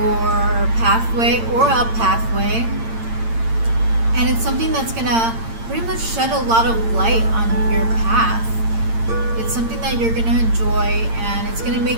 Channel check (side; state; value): left; late; 8.8 ms